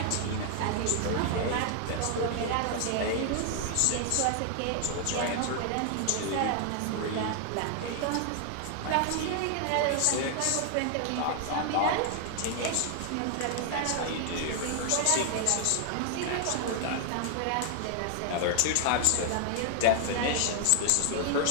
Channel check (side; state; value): both; different; correlation 0.00